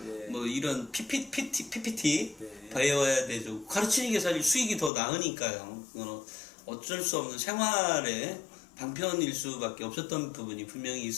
예. 뭐 이런 PPT 네. 배워야 되죠. 가르치는 게 사실 수익이 더 나으니까요. 어쩔 수 없는 생활의 방편일 수밖에 없었던 부분이 분명히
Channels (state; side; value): drops out; right; at 4.9 s